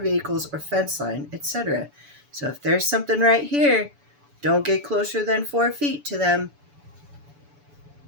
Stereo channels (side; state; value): left; late; 6.9 ms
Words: or fence line, etc. So if there's something right here, don't get closer than 4 feet to them.